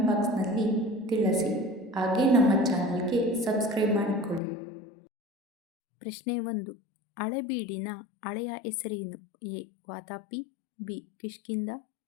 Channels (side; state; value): right; drops out; at 4.4 s